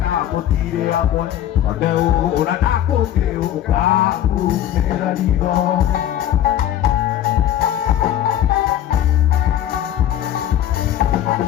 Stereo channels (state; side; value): quieter; right; 11.4 dB